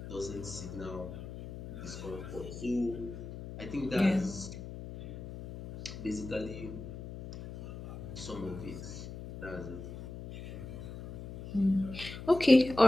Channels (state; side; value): noise; left; hum, 10 dB below the sound